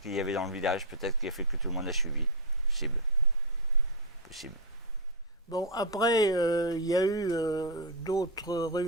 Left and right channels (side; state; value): both; normal; correlation -0.01